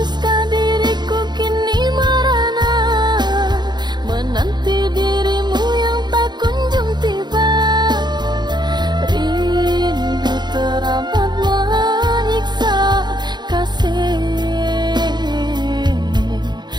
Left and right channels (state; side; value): late; left; 0.21 ms